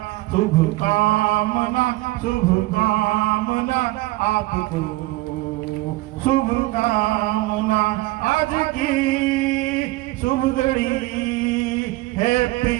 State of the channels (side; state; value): left; quieter; 19.7 dB